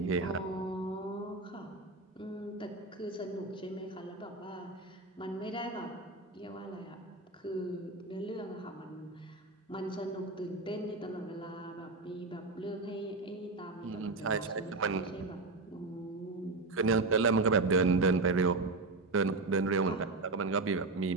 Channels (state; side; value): quieter; left; 3.4 dB